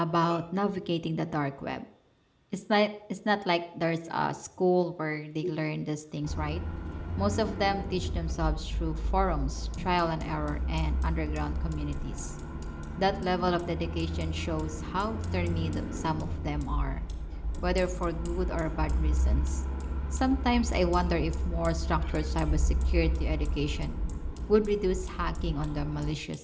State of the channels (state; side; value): identical; both; correlation 1.00